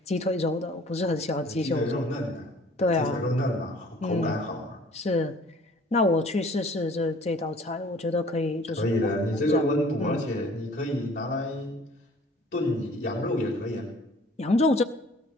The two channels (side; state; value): both; normal; correlation 0.52